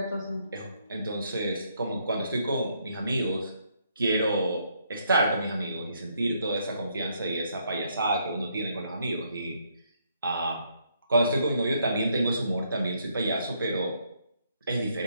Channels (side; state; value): both; inverted; correlation -0.73